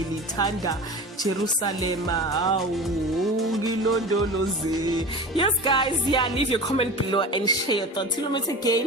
Jerusalem. Yes guys, leave your comment below and share your thoughts. Till we meet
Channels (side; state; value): both; normal; correlation 0.33